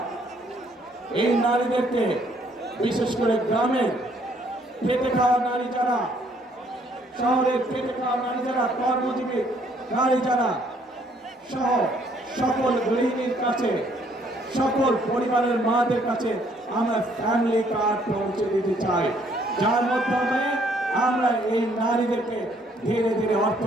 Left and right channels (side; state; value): both; normal; correlation 0.65